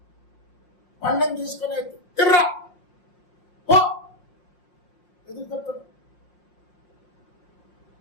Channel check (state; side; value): late; right; 5.6 ms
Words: పండం తీసుకునే తిర్రా ఎదురు చెప్తాడు.